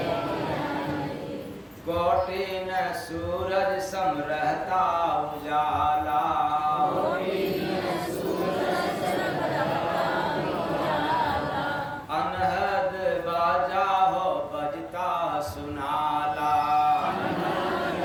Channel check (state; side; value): identical; both; correlation 1.00